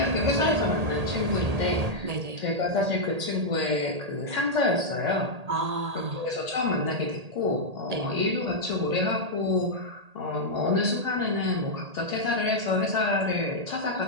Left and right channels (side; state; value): left; late; 1.8 ms